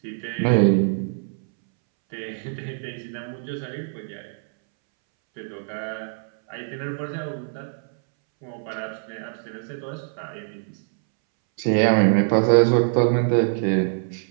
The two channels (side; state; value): left; silent; 63 dB below the other